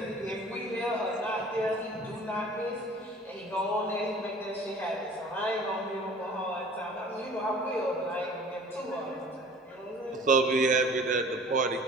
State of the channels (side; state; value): both; normal; correlation 0.47